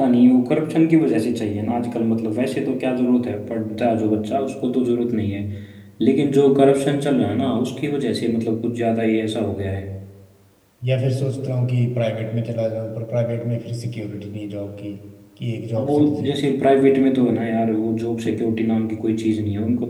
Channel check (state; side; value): identical; both; correlation 1.00